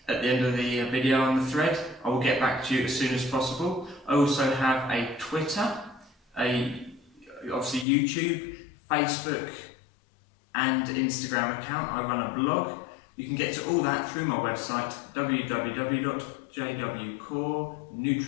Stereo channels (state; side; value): drops out; right; at 7.9 s